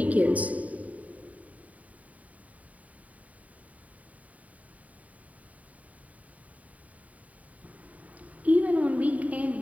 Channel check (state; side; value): late; left; 0.070 ms